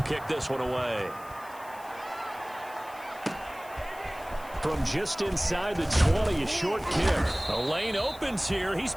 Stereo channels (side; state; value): left; noise; hiss, 21 dB below the sound